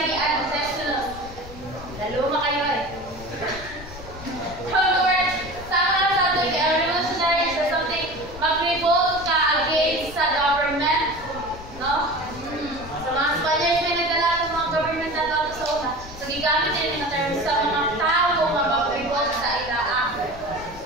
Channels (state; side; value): noise; left; rumble, 15 dB below the sound